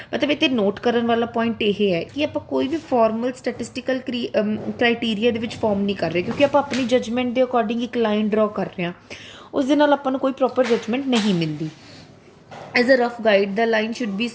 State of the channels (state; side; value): identical; both; correlation 1.00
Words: मतलब इतने note करने वाला point ये है कि आप कोई भी formal statistical criteria they which form नहीं कर रहे, क्योंकि आप अपनी जजमेंट के अकॉर्डिंग एक लाइन ड्रॉ कर रहे हैं, उस दे नाल आपां नूं कोई प्रॉपर जजमेंट नहीं मिलती। As a rough guide, the line should be